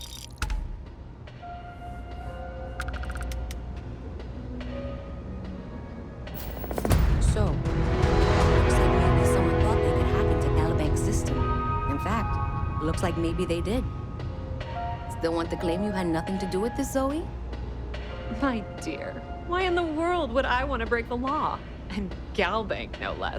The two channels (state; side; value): identical; both; correlation 1.00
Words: So, looks like maybe someone thought they could hack into Calibanc's system. In fact, looks like maybe they did. Still want to claim you had nothing to do with this, Zoe? My dear, why in the world would I want to break the law? And Galbank, no